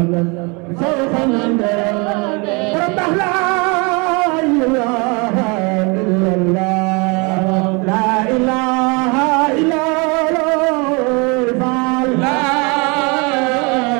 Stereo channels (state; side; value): quieter; left; 30.2 dB